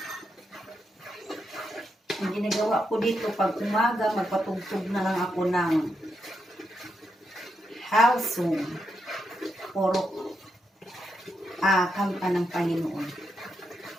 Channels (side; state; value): both; normal; correlation 0.82